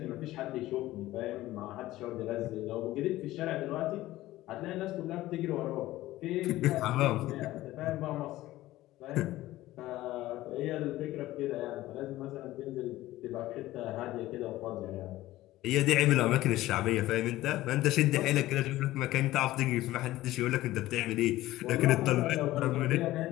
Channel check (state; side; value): quieter; right; 16.2 dB